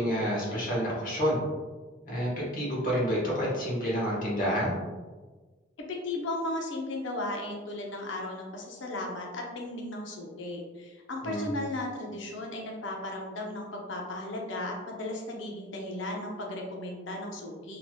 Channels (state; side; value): normal; both; correlation 0.37